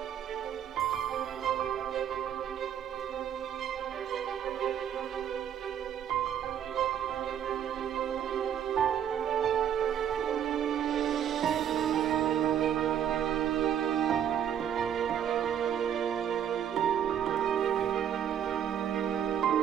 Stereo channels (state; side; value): quieter; left; 9.4 dB